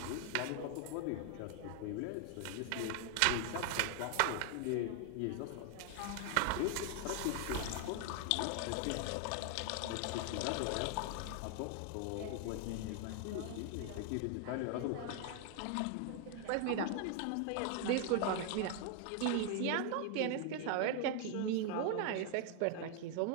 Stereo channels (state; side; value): different; both; correlation 0.00